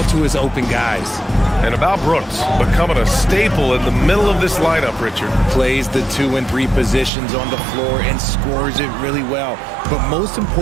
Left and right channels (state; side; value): drops out; left; at 7.1 s